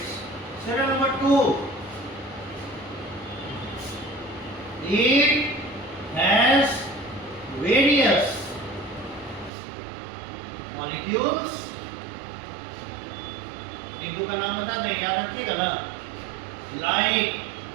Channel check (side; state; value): left; drops out; at 9.5 s